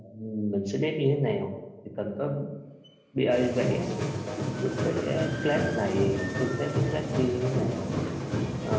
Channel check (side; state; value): both; identical; correlation 1.00